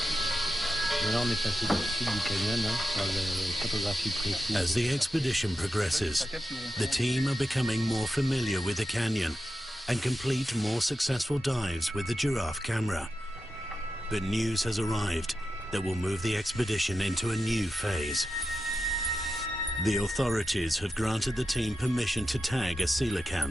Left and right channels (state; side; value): normal; both; correlation 0.89